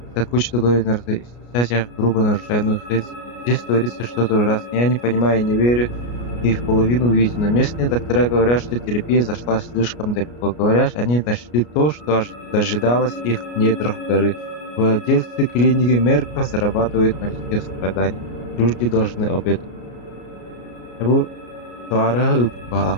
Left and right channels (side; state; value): right; late; 33 ms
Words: кучу договоренностей, и сейчас я грубо нарушаю, но здесь творится что-то ужасное. Я не понимаю и не верю и в половину увиденного. Местные доктора говорят, что терапия зашла слишком далеко. Говорят, они нашли то, что дожидалось их в недрах горы. Владельцы клиники Мерка зарабатывают на людских страданиях. Люди должны об этом. Bu suara